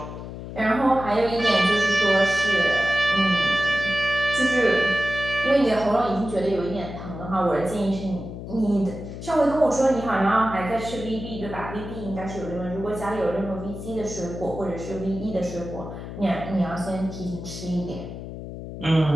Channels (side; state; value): left; noise; hum, 10 dB below the sound